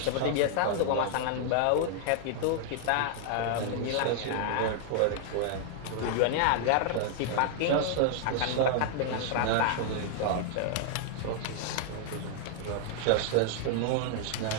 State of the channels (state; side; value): different; both; correlation -0.01